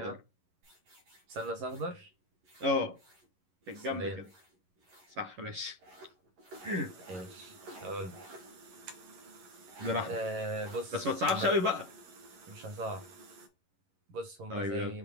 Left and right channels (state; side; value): late; left; 11 ms